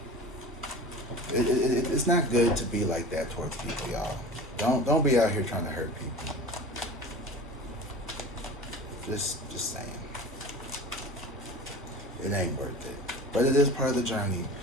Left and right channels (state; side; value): normal; both; correlation 0.37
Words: it's not good to be like that towards people, y'all. Don't be out here trying to hurt people. Just saying. It ain't worth it. But it is part of the journey.